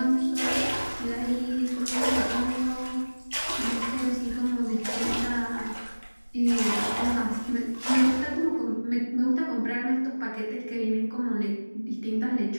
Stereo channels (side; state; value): both; inverted; correlation -1.00